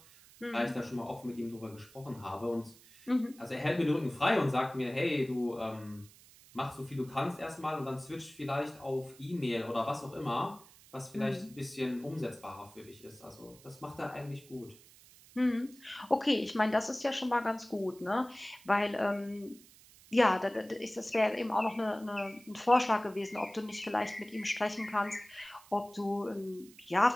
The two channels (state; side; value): noise; right; hiss, 23 dB below the sound